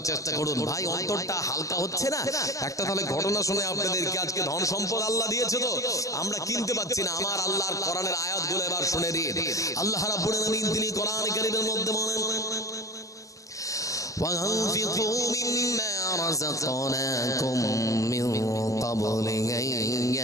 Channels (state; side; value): late; right; 0.16 ms